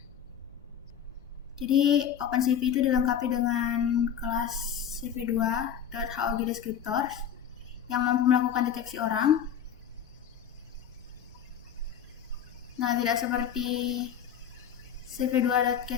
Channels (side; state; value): right; quieter; 8.6 dB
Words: Jadi OpenCV itu dilengkapi dengan kelas cv2.hog descriptors yang mampu melakukan deteksi orang. Nah, tidak seperti